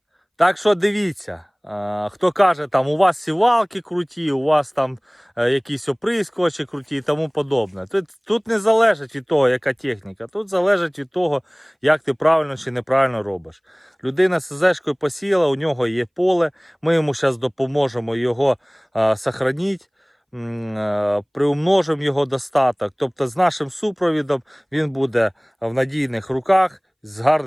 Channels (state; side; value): identical; both; correlation 1.00